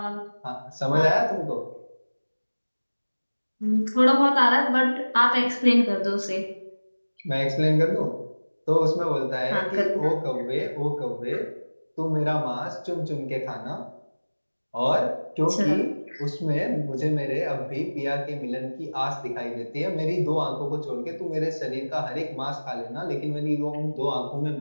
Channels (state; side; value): inverted; both; correlation -1.00